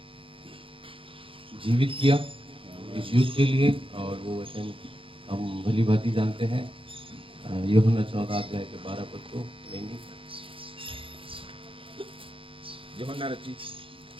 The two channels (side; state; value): left; late; 0.26 ms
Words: जीवित किया इस युग के लिए, और वो वचन हम भली भांति जानते हैं। यूहन्ना 14 अध्याय के 12 पद को लेंगे। यूहन्ना रचित